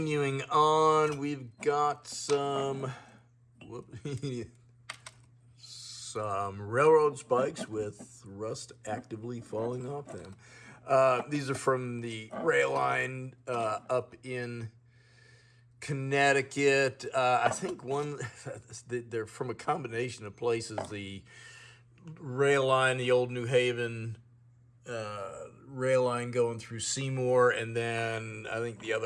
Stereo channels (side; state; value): both; identical; correlation 1.00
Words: on, we've got some railroad spikes with rust actively falling off them. These are from the rail line up in Connecticut. I think they're from a combination of places. The rail line, the old New Haven rail line going through Seymour, and then I think the